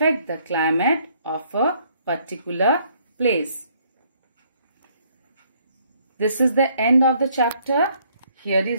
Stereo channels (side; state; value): both; inverted; correlation -0.66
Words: the climate of a particular place? This is the end of the chapter. Here